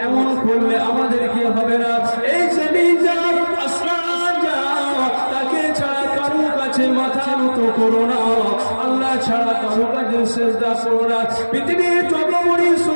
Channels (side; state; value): both; inverted; correlation -1.00